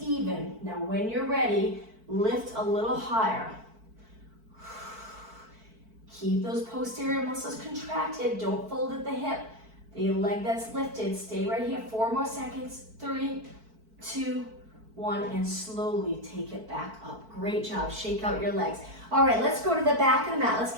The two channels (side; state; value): left; late; 4.5 ms